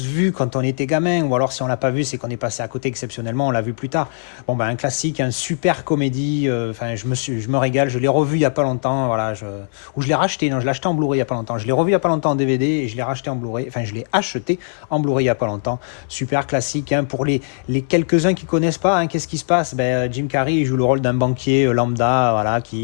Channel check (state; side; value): silent; right; 59 dB below the other